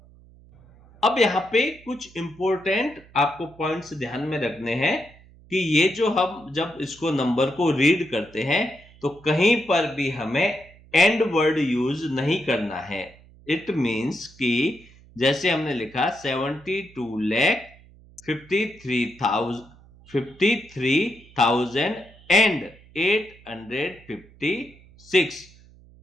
अब यहाँ पे कुछ इंपॉर्टेंट आपको पॉइंट्स ध्यान में रखने हैं कि ये जो हम जब इसको नंबर को रीड करते हैं तो कहीं पर भी हमें एंड वर्ड यूज नहीं करना है। इट मींस कि जैसे हमने लिखा 73,856।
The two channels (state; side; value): noise; right; hum, 25 dB below the sound